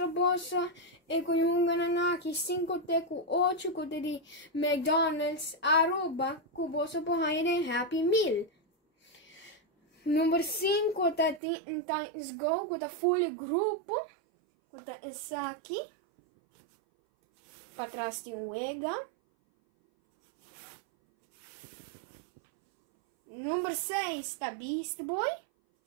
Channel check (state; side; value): drops out; left; at 11.4 s